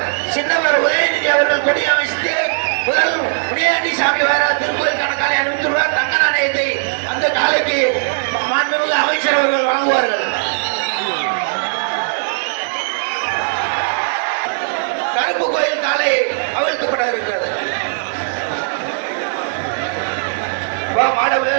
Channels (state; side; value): silent; left; digital silence